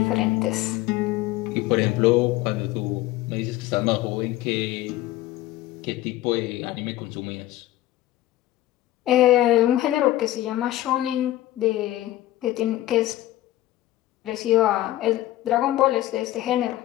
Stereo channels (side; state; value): right; quieter; 15.4 dB